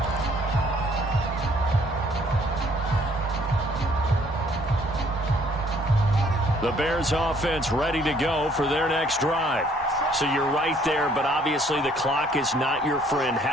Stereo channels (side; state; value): both; normal; correlation 0.62